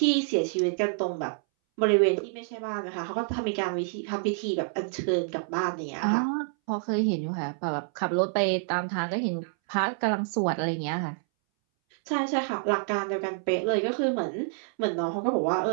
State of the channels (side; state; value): left; silent; 59 dB below the other